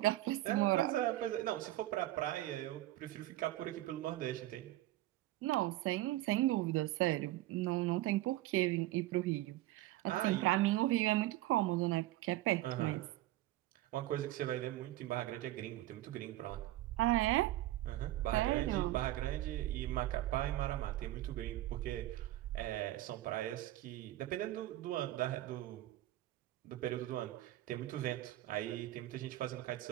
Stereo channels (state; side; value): quieter; left; 15.9 dB